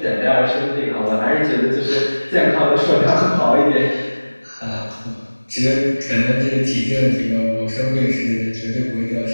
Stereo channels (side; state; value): both; inverted; correlation -1.00